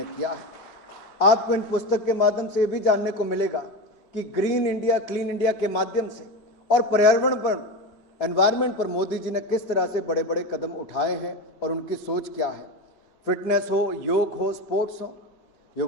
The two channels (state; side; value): late; right; 4.0 ms